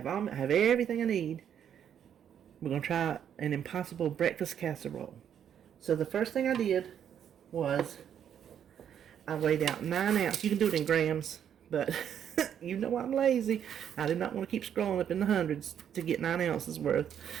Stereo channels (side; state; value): left; quieter; 9.0 dB